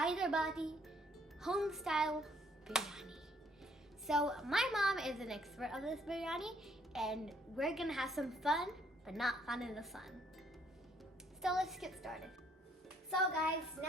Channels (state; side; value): normal; both; correlation 0.66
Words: home-style biryani. So, my mom is an expert of this biryani, and we're gonna have some fun, but not fun in the sun. So, let's get started. So, guys,